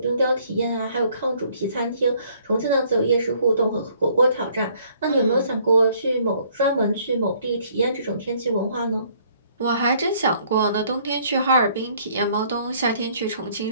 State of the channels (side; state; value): both; inverted; correlation -0.62